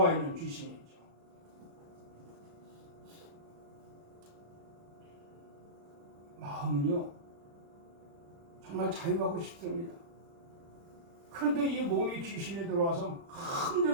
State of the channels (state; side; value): late; left; 35 ms